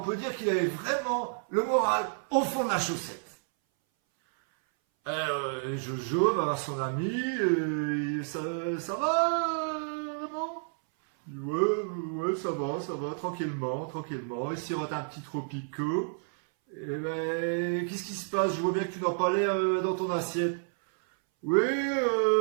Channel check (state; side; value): silent; left; 58 dB below the other